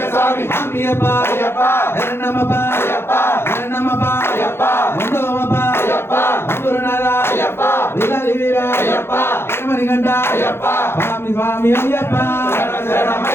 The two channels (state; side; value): late; right; 0.12 ms